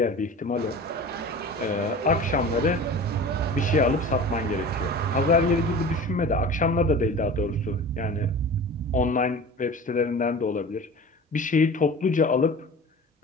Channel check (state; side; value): normal; both; correlation 0.37